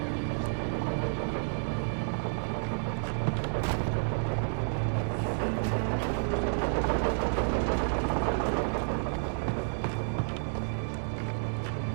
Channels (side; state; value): left; silent; digital silence